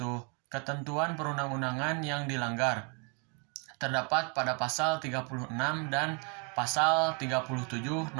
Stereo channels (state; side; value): quieter; left; 34.7 dB